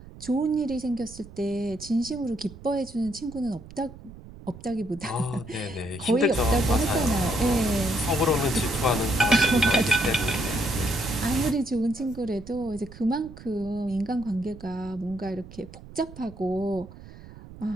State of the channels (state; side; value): noise; right; rumble, 17 dB below the sound